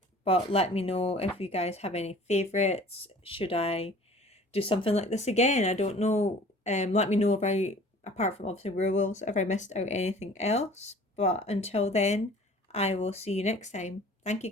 But let me know if you guys have any favourites. Should I do something like this again? I don't know. Let me know about, apart from obviously werewolves, if I missed out anything else. But until then, I will see you next time. Thank you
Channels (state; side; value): normal; both; correlation 0.48